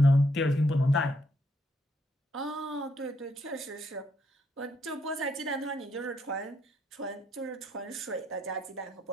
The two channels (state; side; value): normal; both; correlation 0.74